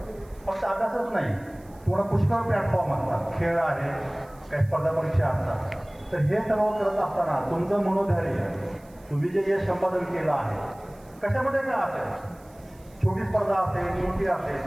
फक्त अभ्यासच नाही, तुम्हाला पुष्कळ प्लॅटफॉर्म असतात, खेळ आहे, काही स्पर्धा परीक्षा असतात. तर हे सर्व करत असताना तुमचं मनोधैर्य, तुम्ही जे यश संपादन केलं आहे कशामध्ये काय असेल, छोटी स्पर्धा असेल, मोठी असेल,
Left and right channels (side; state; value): right; noise; hiss, 29 dB below the sound